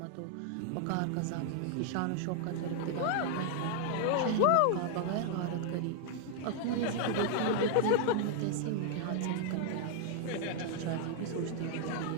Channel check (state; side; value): different; both; correlation 0.00